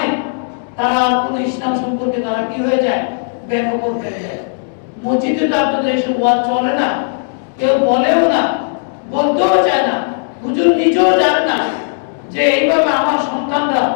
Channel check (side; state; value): right; silent; 69 dB below the other